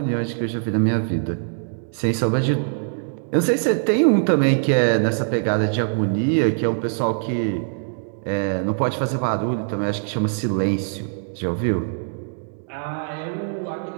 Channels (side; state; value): left; silent; digital silence